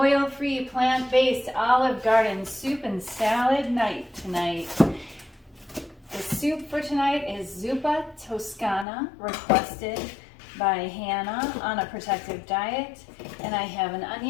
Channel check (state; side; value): drops out; right; at 8.8 s